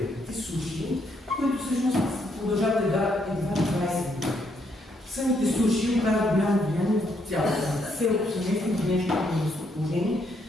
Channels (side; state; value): both; normal; correlation 0.74